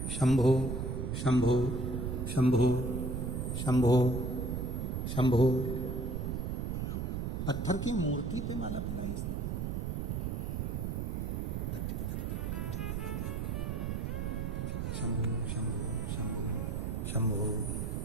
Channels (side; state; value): right; noise; rumble, 2 dB below the sound